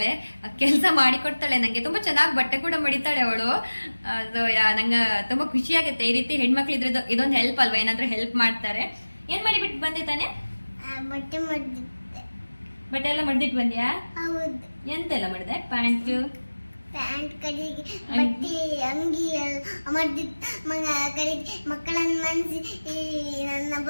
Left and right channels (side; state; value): both; inverted; correlation -1.00